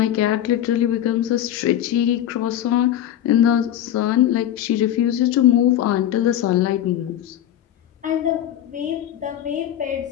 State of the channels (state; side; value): quieter; right; 11.4 dB